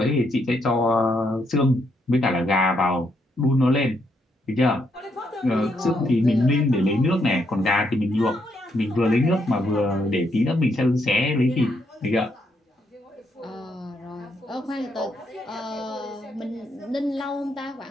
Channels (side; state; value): both; normal; correlation 0.76